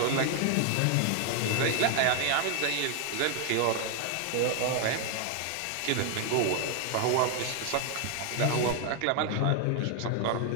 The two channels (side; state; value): both; different; correlation 0.01